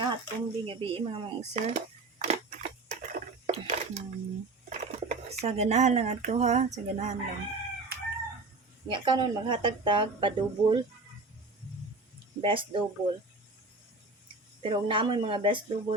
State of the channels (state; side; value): quieter; left; 3.4 dB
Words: hatong gabi mga sir. Sa ganahan lang ato ha, sa ganahan lang. Nga kanon maghatag tag pa-double. Best double. Pero kung namoy mga best